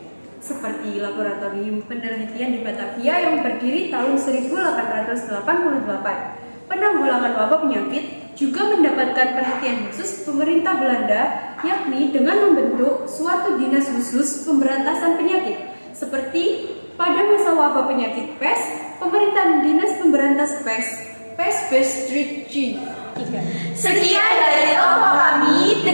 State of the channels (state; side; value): inverted; both; correlation -1.00